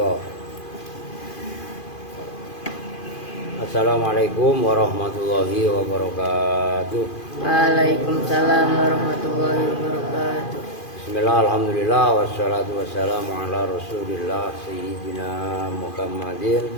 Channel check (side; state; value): right; late; 2.5 ms